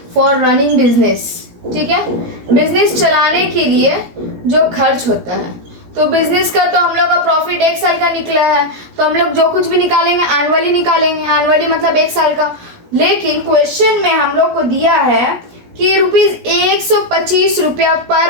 for running business. ठीक है, बिजनेस चलाने के लिए जो खर्च होता है। तो बिजनेस का तो हम लोग का प्रॉफिट 1 साल का निकला है, तो हम लोग जो कुछ भी निकालेंगे एनुअली निकालेंगे। एनुअली मतलब 1 साल का। लेकिन क्वेश्चन में हम लोग को दिया है कि ₹125 रुपया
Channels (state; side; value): late; left; 17 ms